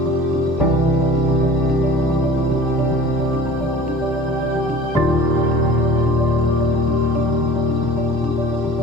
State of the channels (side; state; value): both; normal; correlation 0.42